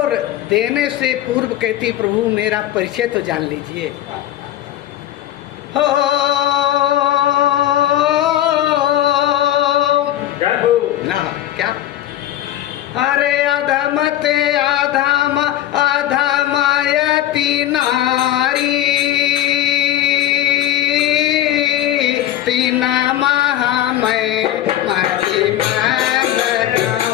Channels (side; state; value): right; quieter; 12.7 dB